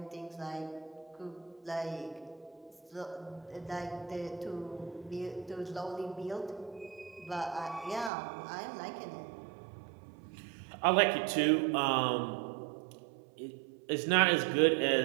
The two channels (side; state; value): left; drops out; at 8.1 s